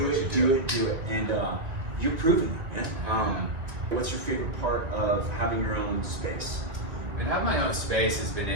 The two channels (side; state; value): left; late; 2.0 ms